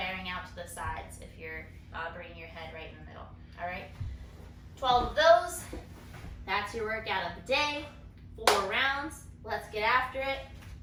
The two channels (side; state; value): both; identical; correlation 1.00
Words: out to the sides if you're bringing your head right in the middle. All right, 12 of those. That's your workout of the day. 4 rounds. Let's get after it.